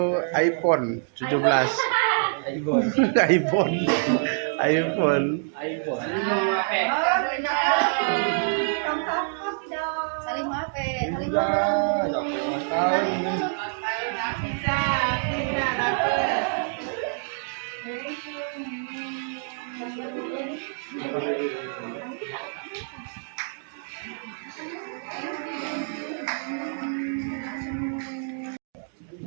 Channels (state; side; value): silent; left; digital silence